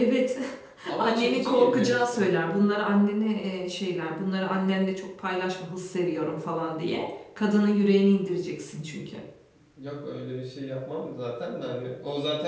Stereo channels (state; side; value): identical; both; correlation 1.00